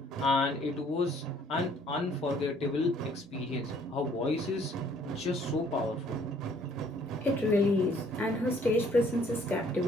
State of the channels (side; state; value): both; normal; correlation 0.60